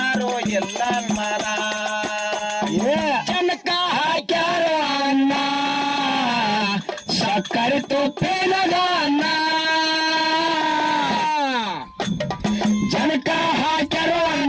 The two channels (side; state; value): both; identical; correlation 1.00